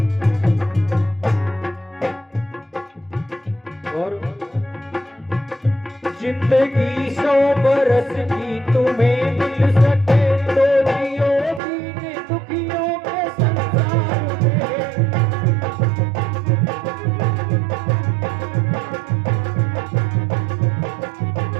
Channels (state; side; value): drops out; left; at 11.6 s